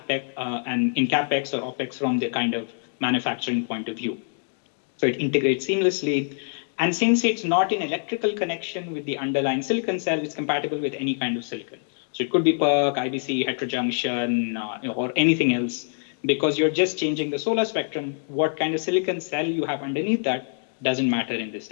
or OpEx from the kind of manufacturing point of view. So it integrates seamlessly. And since it's not in electrical connection with the underlying silicon cell, it's compatible with any kind of silicon. So it could be PERC, IBC, heterojunction, or anything else. Because you're just changing the solar spectrum, what kind of silicon cell you have underneath that doesn't matter in this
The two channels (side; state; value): right; silent; digital silence